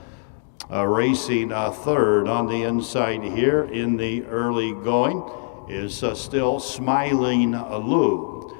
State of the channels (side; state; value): right; silent; digital silence